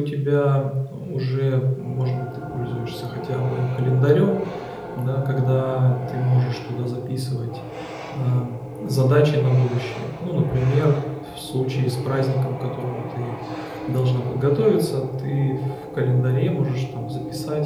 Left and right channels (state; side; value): identical; both; correlation 1.00